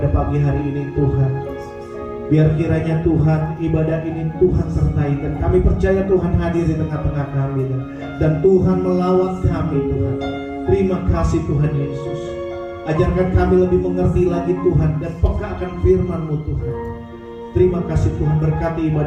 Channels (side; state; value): both; identical; correlation 1.00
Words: pagi hari ini Tuhan. Biar kiranya Tuhan ibadah ini Tuhan sertai, dan kami percaya Tuhan hadir di tengah-tengah kami, dan Tuhan melawat kami Tuhan. Terima kasih Tuhan Yesus. Ajarkan kami lebih mengerti lagi Tuhan, dan peka akan firman-Mu Tuhan. Terima kasih Tuhan, berkati